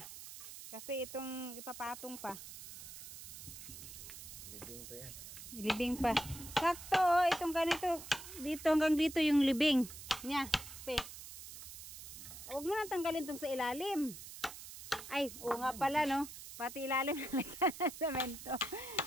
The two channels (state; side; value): noise; right; hiss, 12 dB below the sound